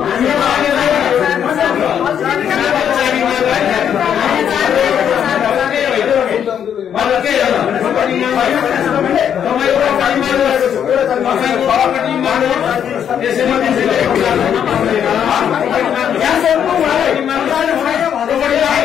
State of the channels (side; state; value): right; quieter; 8.7 dB